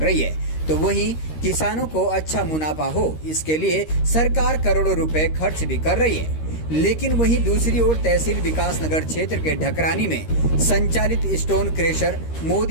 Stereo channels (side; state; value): right; late; 13 ms